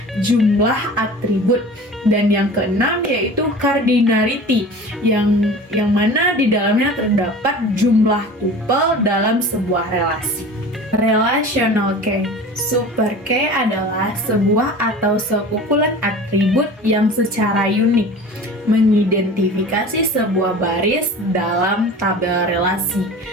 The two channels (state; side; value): normal; both; correlation 0.39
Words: jumlah atribut. Dan yang keenam yaitu cardinality, yang mana di dalamnya terdapat jumlah tuple dalam sebuah relasi. Relational key. Super key adalah sebuah atau sekumpulan atribut yang secara unik mengidentifikasi sebuah baris dalam tabel relasi.